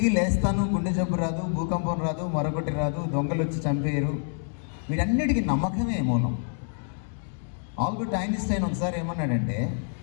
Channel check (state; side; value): silent; right; 60 dB below the other